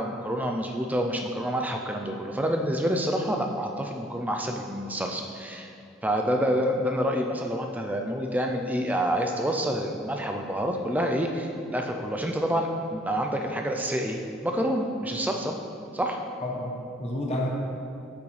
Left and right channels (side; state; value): both; normal; correlation 0.62